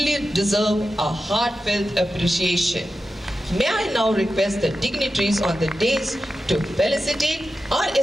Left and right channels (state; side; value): normal; both; correlation 0.91